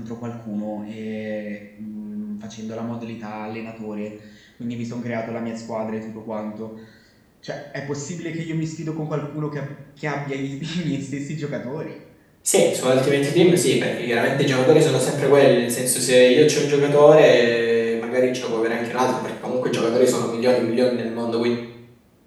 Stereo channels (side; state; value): both; identical; correlation 1.00